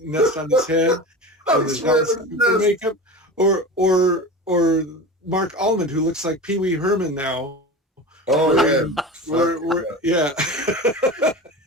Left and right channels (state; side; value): normal; both; correlation 0.30